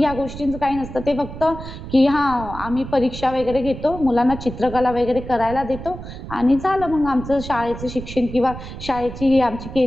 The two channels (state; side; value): noise; right; rumble, 11 dB below the sound